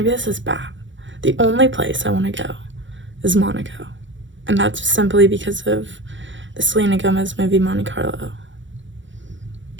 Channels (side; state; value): left; late; 0.55 ms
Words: this is bad. The only place I want to go is Monaco. And that's simply because of the Selena Gomez movie Monte Carlo.